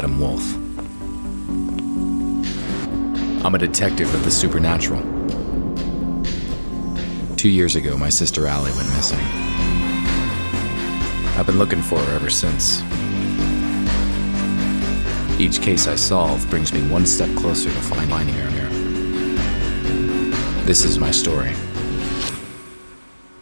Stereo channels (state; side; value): inverted; both; correlation -1.00